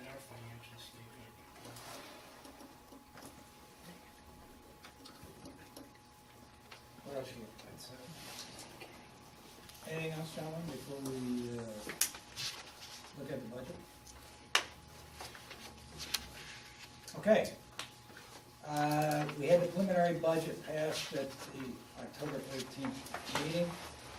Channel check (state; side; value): identical; both; correlation 1.00